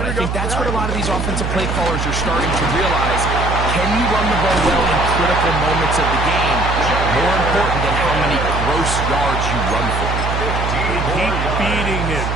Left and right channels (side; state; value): right; noise; hum, 2 dB below the sound